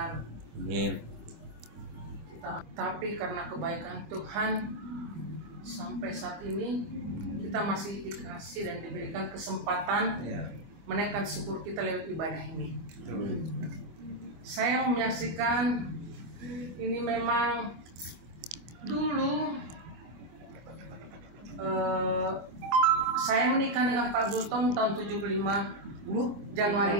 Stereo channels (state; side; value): late; left; 25 ms